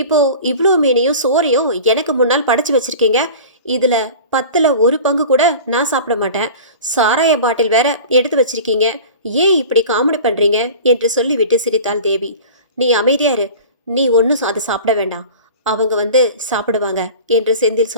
இப்போ இவ்வளோ மீனையும் சோறையும் எனக்கு முன்னால் படைச்சு வச்சிருக்கீங்க. இதுல 10ல் 1 பங்கு கூட நான் சாப்பிட மாட்டேன். சாராய பாட்டில் வேற எடுத்து வச்சிருக்கீங்க. ஏன் இப்படி காமெடி பண்றீங்க என்று சொல்லிவிட்டு சிரித்தாள் தேவி. நீ அமைதியாரு. நீ ஒன்றும் அதை சாப்பிட வேண்டாம். அவங்க வந்து சாப்பிடுவாங்க என்று செந்தில்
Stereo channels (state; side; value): inverted; both; correlation -0.38